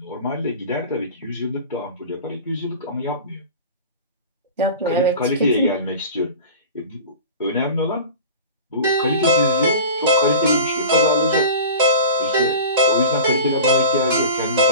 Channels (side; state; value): both; inverted; correlation -0.36